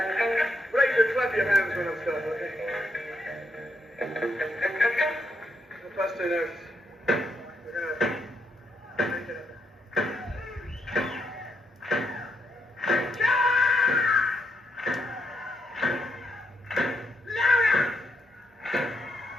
to clap your hands when I'm starting, okay? The first two notes. We're gonna make it up.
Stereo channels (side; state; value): both; normal; correlation 0.79